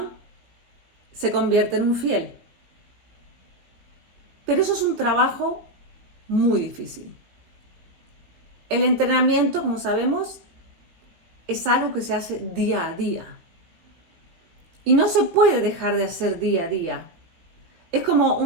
se convierte en un fiel. Pero eso es un trabajo muy difícil. El entrenamiento, como sabemos, es algo que se hace día a día. Y no se puede dejar de hacer día a día. Es como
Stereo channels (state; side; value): late; left; 17 ms